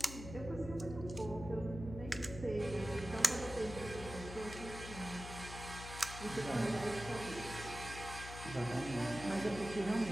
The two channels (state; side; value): noise; left; hum, 10 dB below the sound